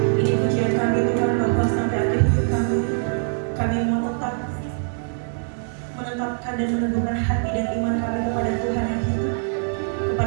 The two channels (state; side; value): silent; left; 61 dB below the other